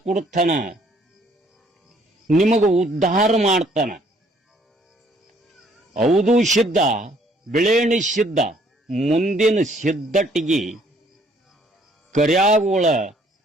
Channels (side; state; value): both; normal; correlation 0.63